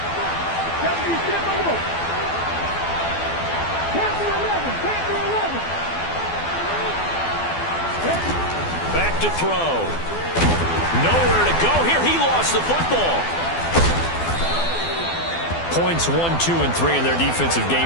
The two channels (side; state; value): right; late; 12 ms